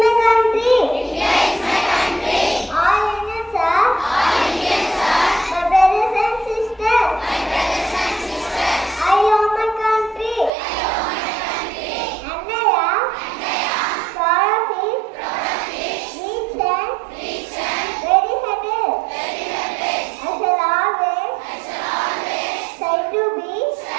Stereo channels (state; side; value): drops out; left; at 10.5 s